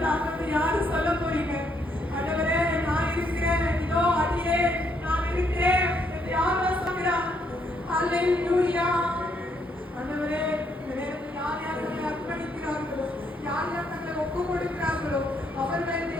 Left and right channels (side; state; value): both; normal; correlation 0.73